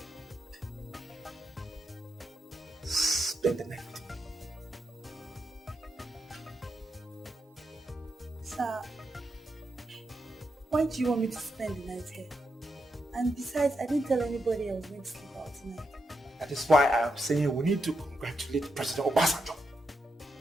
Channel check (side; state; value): both; normal; correlation 0.84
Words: Spend the night with me. Sir, why do you want me to spend the night here? And besides, I didn't tell anybody I was going to sleep out tonight. That is why I am saying we need to congratulate President Obasanjo